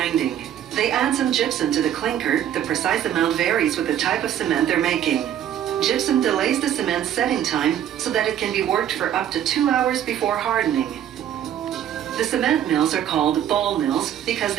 They add some gypsum to the clinker. The precise amount varies with the type of cement they're making. Gypsum delays the cement's setting time so that it can be worked for up to 2 hours before hardening. The cement mills are called ball mills because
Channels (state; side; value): quieter; left; 10.5 dB